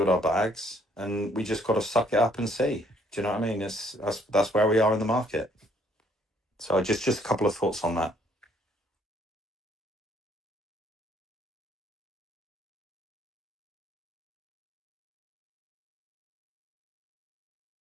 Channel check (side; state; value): both; normal; correlation 0.65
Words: our bags, and we just got to suck it up and see. Do you know what I mean? That's where we are in the market. So just a couple of thoughts on that.